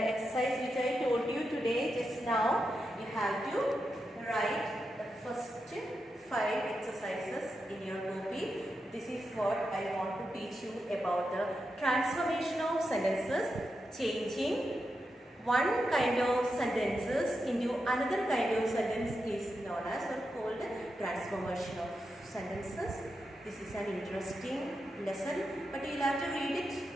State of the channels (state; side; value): normal; both; correlation 0.87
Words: I told you today just now, you have to write the first 5 exercises in your copy. This is what I want to teach you about the transformation of sentences, changing one kind of sentences into another kind of sentence is known as or called transformation of sentences. This is an interesting lesson, but you will have to read it